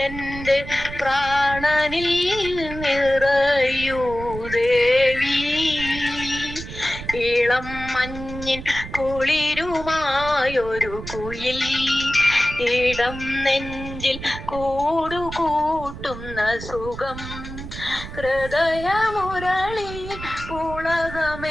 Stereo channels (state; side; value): noise; right; rumble, 11 dB below the sound